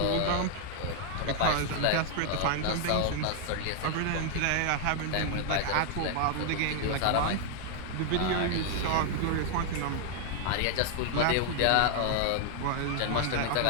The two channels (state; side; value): different; both; correlation 0.00